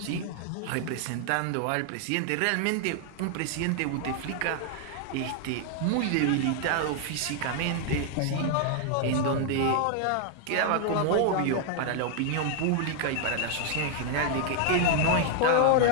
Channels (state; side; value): different; both; correlation 0.00